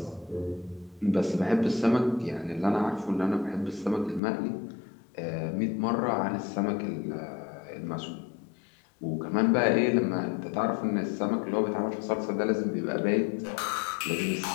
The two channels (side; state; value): right; drops out; at 4.2 s